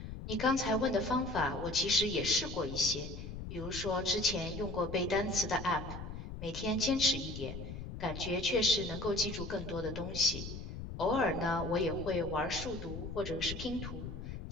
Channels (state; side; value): noise; left; rumble, 8 dB below the sound